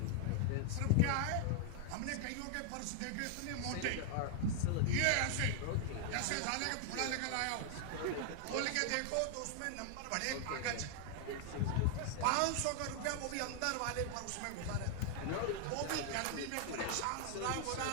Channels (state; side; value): different; both; correlation 0.00